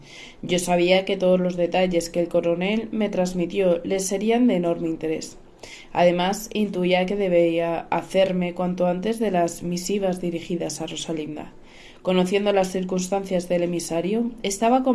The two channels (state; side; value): identical; both; correlation 1.00